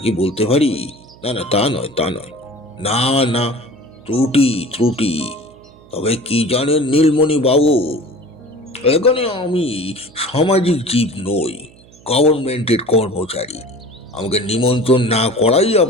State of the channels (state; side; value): noise; right; hum, 25 dB below the sound